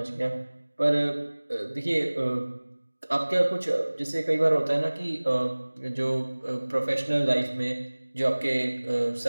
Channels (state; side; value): inverted; both; correlation -1.00